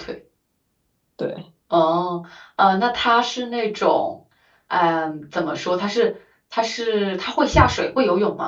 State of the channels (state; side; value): identical; both; correlation 1.00